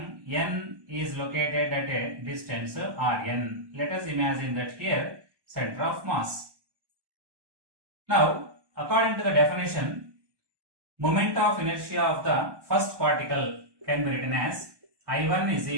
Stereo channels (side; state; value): left; late; 1.2 ms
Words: is located at a distance Rn. Let us imagine that here center of mass. Now, according to the definition, moment of inertia of the first particle can be written as I1 is